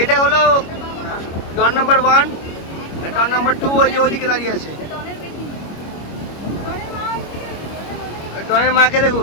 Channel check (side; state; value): right; late; 25 ms